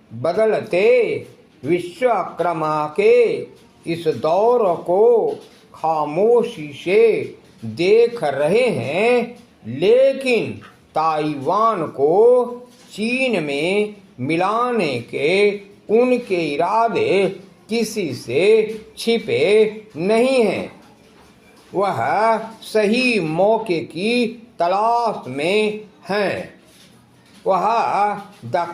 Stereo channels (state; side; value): identical; both; correlation 1.00